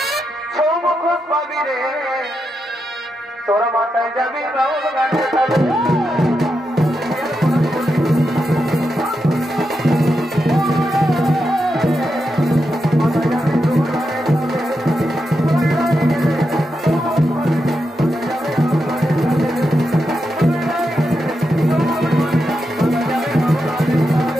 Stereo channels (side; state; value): both; normal; correlation 0.86